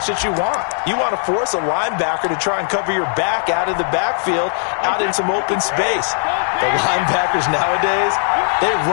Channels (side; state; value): right; silent; 56 dB below the other